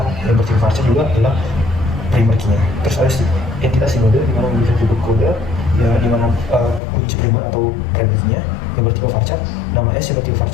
yang bertiga varchar juga adalah primer key-nya. Terus ada entitas sinode, di mana memiliki atribut kode ya, di mana kunci primer atau primer key-nya yang bertipe varchar, nama S yang bertipe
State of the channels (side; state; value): right; drops out; at 6.8 s